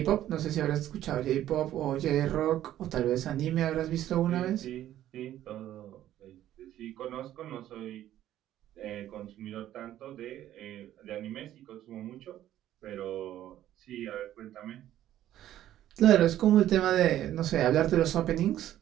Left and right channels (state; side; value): quieter; left; 12.6 dB